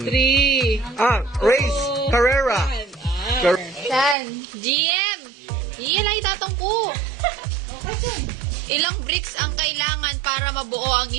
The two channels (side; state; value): left; drops out; at 4.2 s